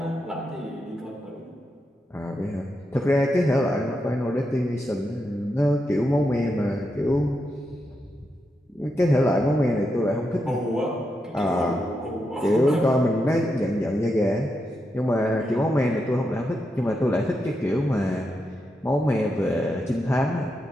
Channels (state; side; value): normal; both; correlation 0.85